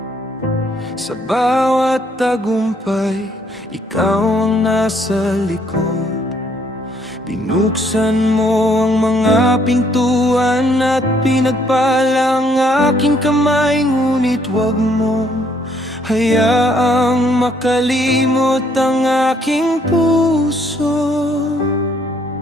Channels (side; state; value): both; normal; correlation 0.67